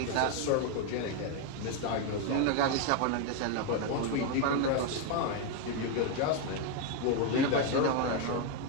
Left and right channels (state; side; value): different; both; correlation 0.01